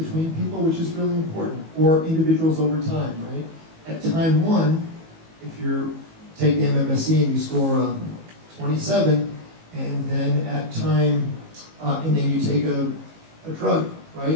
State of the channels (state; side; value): late; left; 19 ms